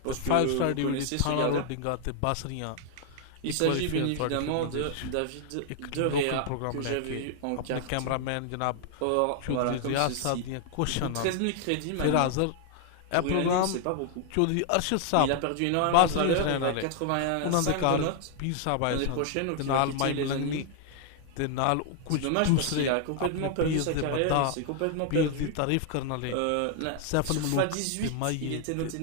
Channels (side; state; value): both; different; correlation 0.00